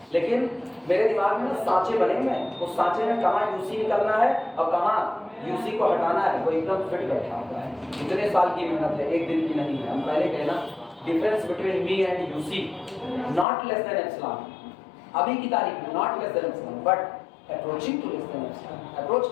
लेकिन मेरे दिमाग में सांचे बने हुए हैं। उस सांचे में कहाँ यूसी निकलना है और कहाँ यूसी को हटाना है, वो एकदम फिट बैठा हुआ है। इतने साल की मेहनत है, एक दिन की नहीं है। हम पहले कहना difference between me and UC not less than epsilon, अभी की तारीख में not less than epsilon, but approaching to less than epsilon, approach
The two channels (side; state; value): right; drops out; at 13.5 s